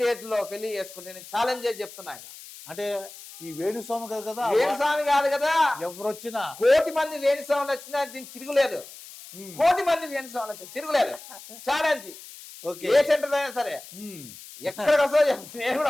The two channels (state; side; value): noise; left; hiss, 16 dB below the sound